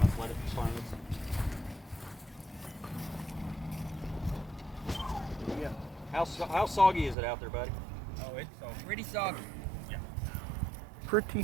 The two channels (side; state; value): left; drops out; at 7.2 s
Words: let it fly. How soggy is it out there, buddy? Oh, it's pretty soggy. Pretty